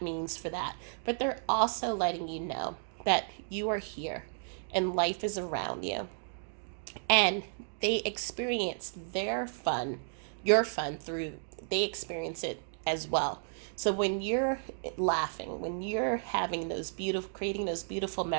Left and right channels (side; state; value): left; silent; digital silence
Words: for that. But they're also letting you know that you are here and life is around you. And they experience their fun, your fun, through, they experience it as well. So when you're laughing, when you're having those beautiful, creating those beautiful